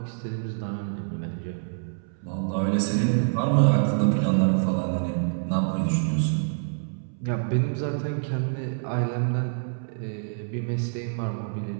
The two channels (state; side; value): silent; left; 61 dB below the other